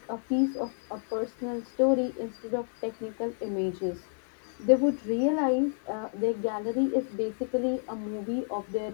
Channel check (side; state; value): right; silent; 57 dB below the other